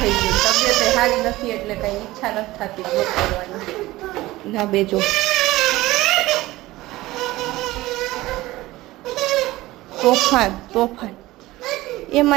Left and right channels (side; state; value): left; quieter; 18.1 dB